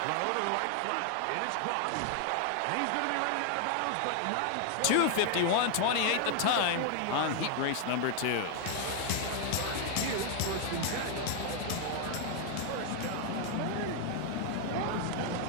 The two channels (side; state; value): both; different; correlation 0.00